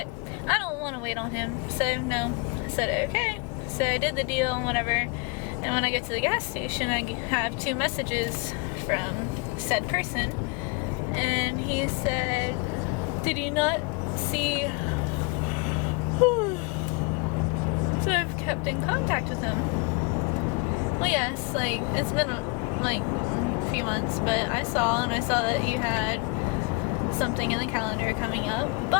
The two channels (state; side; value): quieter; right; 28.7 dB